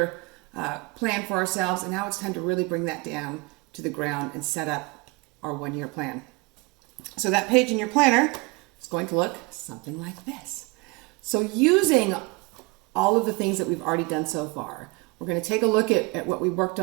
plan for ourselves, and now it's time to really bring that down to the ground and set up our one-year plan. So that page in your planner is going to look something like this. So using all of the things that we've already done so far, we're going to take a look at what we worked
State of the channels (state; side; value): quieter; left; 26.6 dB